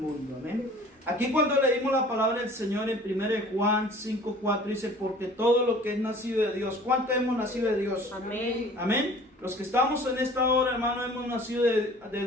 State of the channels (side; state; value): both; normal; correlation 0.48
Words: Amén. Aquí cuando leímos la palabra del Señor en 1 de Juan 5:4 dice, porque todo lo que es nacido de Dios. ¿Cuánto hemos nacido de Dios? Amén. Amén. Los que estamos en esta hora, hermano, hemos nacido de